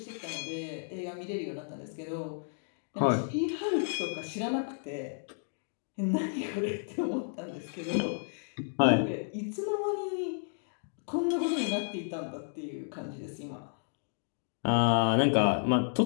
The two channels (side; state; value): right; silent; digital silence